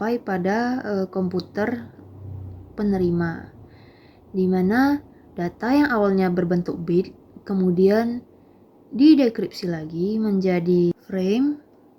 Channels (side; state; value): both; identical; correlation 1.00